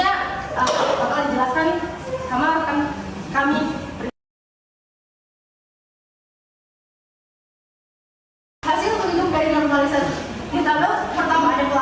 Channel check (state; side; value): identical; both; correlation 1.00